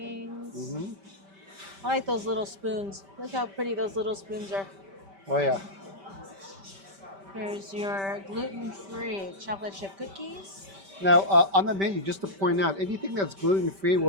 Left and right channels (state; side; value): late; left; 5.1 ms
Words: Hmm. I like those little spoons. Look how pretty those little spoons are. Oh yeah. Here's your gluten-free chocolate chip cookies. Now on the menu, just to point out, anything that's gluten free